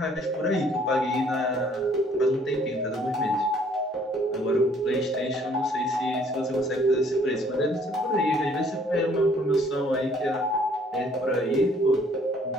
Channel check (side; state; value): both; normal; correlation 0.61